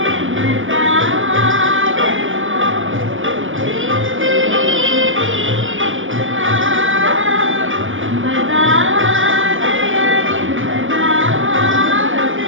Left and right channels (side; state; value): left; late; 0.58 ms